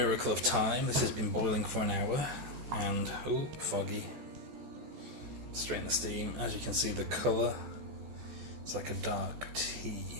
of time, this has been boiling for an hour and, oh, foggy. Strain the steam. As you can see, the colour, it's like a dark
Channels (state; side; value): late; left; 14 ms